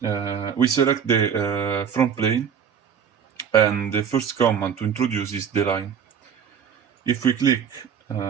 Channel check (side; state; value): left; quieter; 7.6 dB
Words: We select the front plane and the first command to introduce is the line. If we click